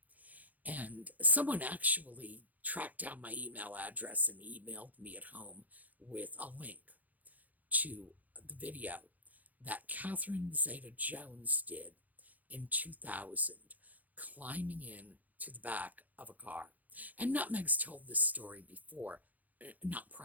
And someone actually tracked down my email address and emailed me at home with a link to the video that Catherine Zeta-Jones did in 2000, climbing in to the back of a car. And Nutmeg's told this story before, not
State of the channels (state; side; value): late; left; 0.080 ms